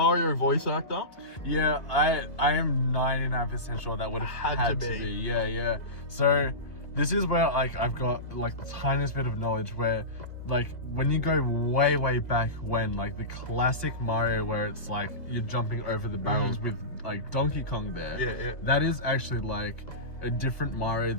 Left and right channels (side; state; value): right; late; 2.1 ms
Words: voice actor? Yeah, I am 99% sure that would have had to be. Yeah. So this is where like I've got like the tiniest bit of knowledge where like when you go way back when like the classic Mario where it's like you're jumping over the barrels with like Donkey Kong there. That is actually like a different Mario